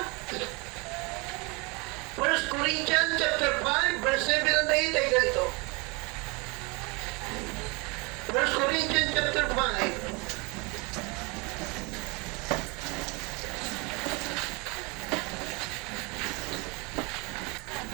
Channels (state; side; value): quieter; left; 28.3 dB